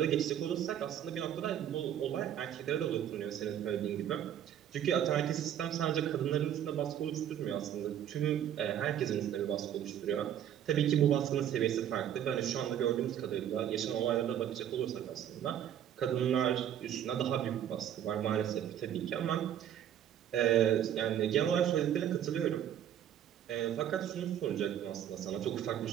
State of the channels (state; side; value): quieter; left; 10.3 dB